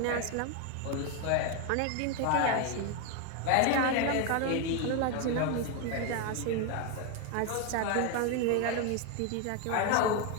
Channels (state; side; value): different; both; correlation 0.01